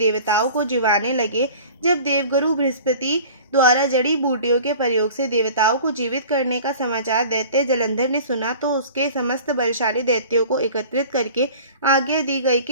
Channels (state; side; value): inverted; both; correlation -0.43